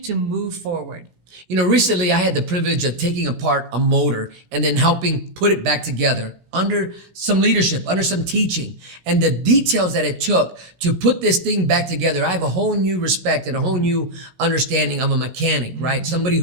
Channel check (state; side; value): late; left; 16 ms